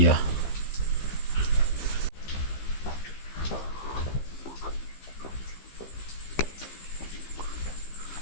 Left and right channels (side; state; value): right; late; 15 ms